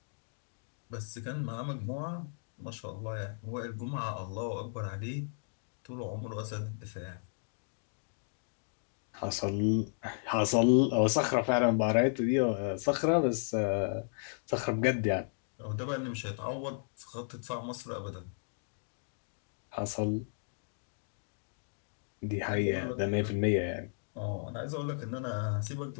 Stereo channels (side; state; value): right; silent; digital silence